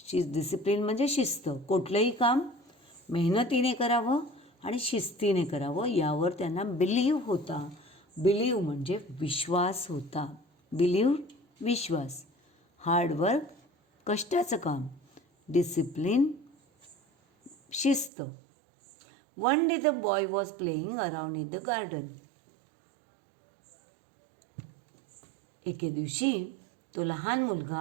डिसिप्लिन म्हणजे शिस्त. कुठलंही काम मेहनतीने करावं आणि शिस्तीने करावं यावर त्यांना बिलीव्ह होता. बिलीव्ह म्हणजे विश्वास होता. बिलीव्ह विश्वास. हार्ड वर्क कष्टाचं काम. डिसिप्लिन शिस्त. One day the boy was playing around in the garden. एके दिवशी तो लहान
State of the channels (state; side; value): drops out; left; at 18.1 s